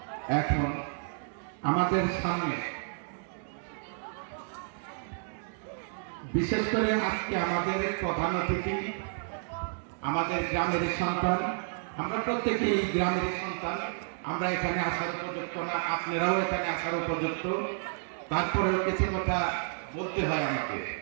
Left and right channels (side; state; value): left; silent; digital silence